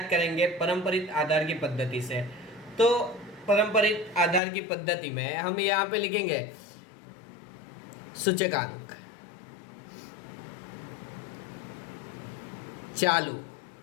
करेंगे परंपरित आधार की पद्धति से। तो परंपरित आधार की पद्धति में हम यहाँ पे लिखेंगे सूचकांक चालू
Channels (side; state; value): right; drops out; at 4.4 s